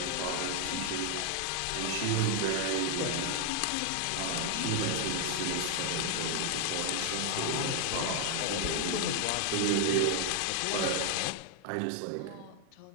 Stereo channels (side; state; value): both; different; correlation 0.00